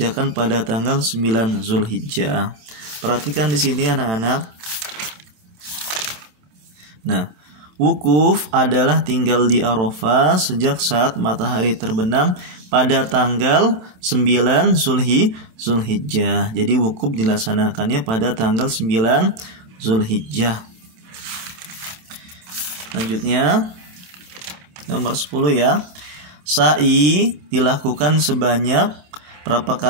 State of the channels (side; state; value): left; late; 28 ms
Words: pada tanggal 9 Zulhijjah. Perhatikan di sini anak-anak. Nah, wukuf adalah tinggal di Arafah sejak saat matahari terbenam pada tanggal 9 Zulhijjah. Jadi wukuf dilaksanakannya pada tanggal 9 Zulhijjah. Selanjutnya nomor 10 ya. Sa'i dilakukan sebanyak berapa